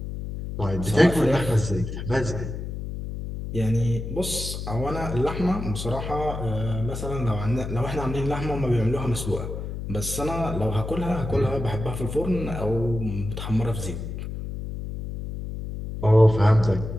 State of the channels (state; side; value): noise; left; hum, 6 dB below the sound